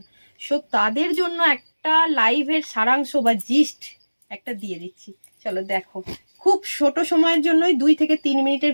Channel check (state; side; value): inverted; both; correlation -1.00